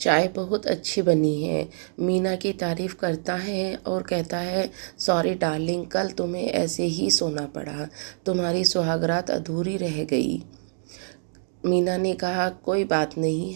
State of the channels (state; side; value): silent; left; digital silence